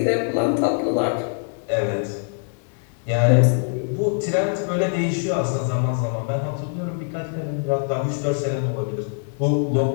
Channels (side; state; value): right; silent; 56 dB below the other